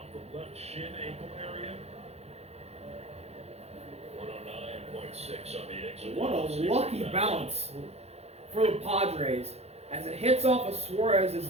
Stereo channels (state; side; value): late; left; 0.31 ms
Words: the left shin ankle area. 109.6 on the exit. What a lucky bounce for the Padres as it hits off of Suarez's